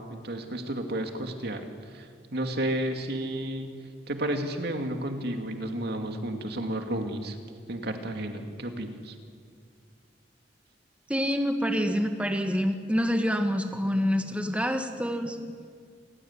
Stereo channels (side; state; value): both; normal; correlation 0.74